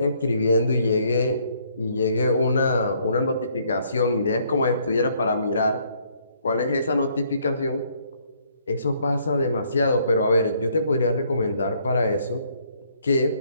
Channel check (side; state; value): both; inverted; correlation -0.67